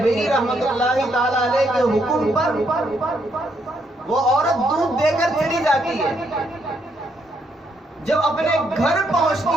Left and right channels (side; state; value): both; normal; correlation 0.74